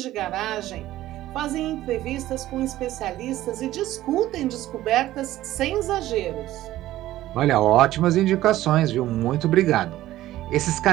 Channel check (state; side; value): quieter; left; 14.9 dB